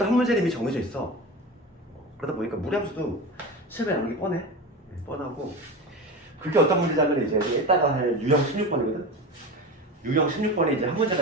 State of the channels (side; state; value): both; normal; correlation 0.27